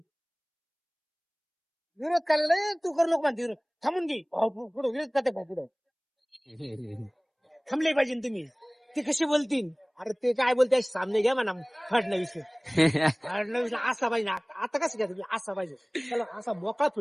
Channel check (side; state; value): both; identical; correlation 1.00